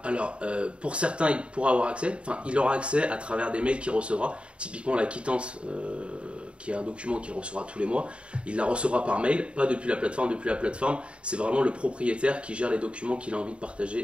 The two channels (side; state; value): left; late; 0.058 ms